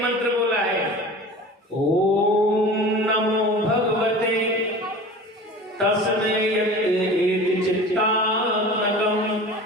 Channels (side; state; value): both; normal; correlation 0.38